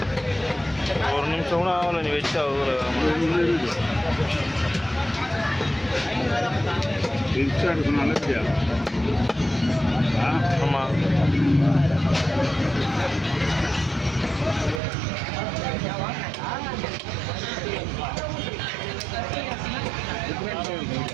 ஒரு நிமிஷம் கூட ஆகலை நீ வச்சு அவ்வளோ நல்லது. ஆமாம்.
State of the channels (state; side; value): drops out; left; at 14.8 s